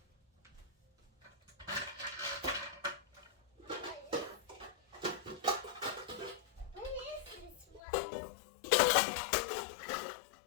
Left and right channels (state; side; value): drops out; right; at 7.8 s